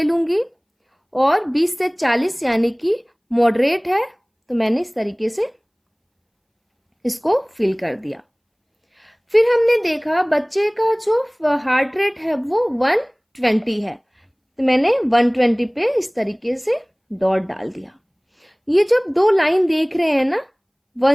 लूंगी, और 20 से 40 यानी कि मॉडरेट है, तो मैंने इस तरीके से इसको फिल कर दिया। फिर हमने देखा बच्चे का जो हार्ट रेट है वो 120 है, तो मैंने 120 पे इस तरीके से डॉट डाल दिया। ये जब 2 लाइन देख रहे हैं ना,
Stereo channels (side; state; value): both; identical; correlation 1.00